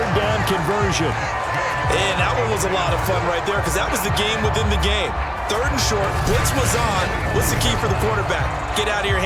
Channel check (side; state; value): both; identical; correlation 1.00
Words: down conversion. And that one was a lot of fun right there because that was the game within the game. 3rd and short, blitz was on. What's the key for the quarterback? Get out of your